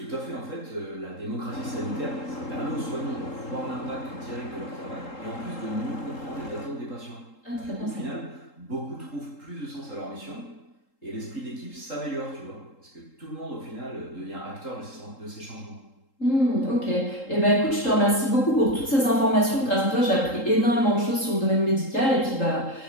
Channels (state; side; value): late; right; 3.8 ms